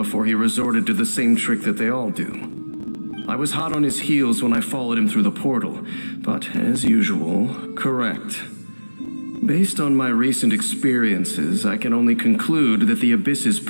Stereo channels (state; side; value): inverted; both; correlation -1.00